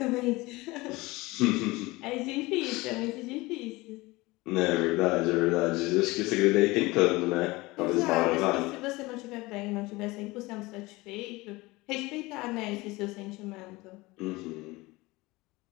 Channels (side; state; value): right; quieter; 21.8 dB